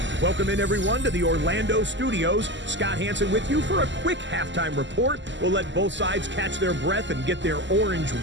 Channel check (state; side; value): late; left; 0.54 ms